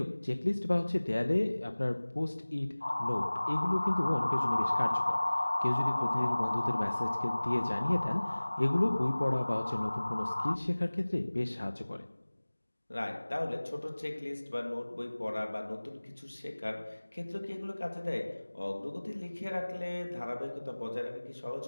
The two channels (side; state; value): both; inverted; correlation -1.00